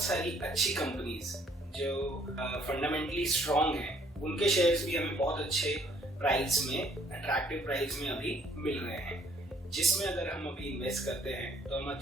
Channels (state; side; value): normal; both; correlation 0.63